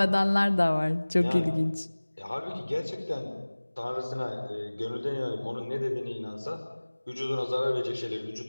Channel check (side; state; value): both; inverted; correlation -1.00